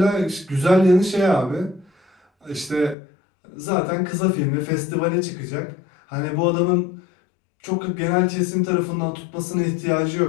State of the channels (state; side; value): drops out; right; at 3.0 s